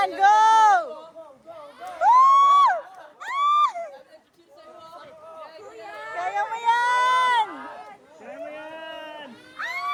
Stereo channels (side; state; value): both; identical; correlation 1.00